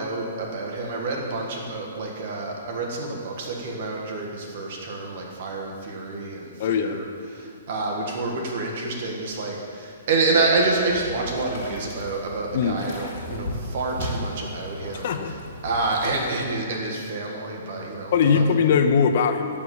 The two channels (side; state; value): both; inverted; correlation -0.46